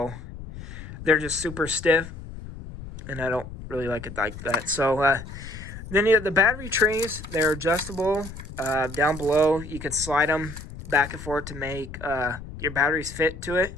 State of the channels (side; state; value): left; noise; rumble, 12 dB below the sound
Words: they're just super stiff. And I don't really like it like that. So, then the battery trays, they're adjustable. Down below, you can slide them back and forth to make your batteries fit to it.